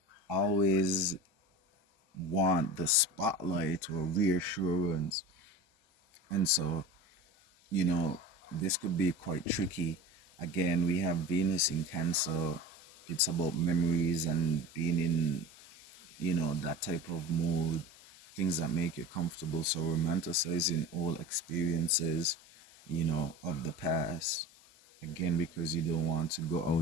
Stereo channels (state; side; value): normal; both; correlation 0.34